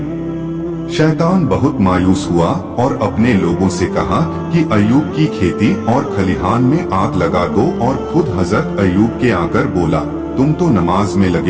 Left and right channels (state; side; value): identical; both; correlation 1.00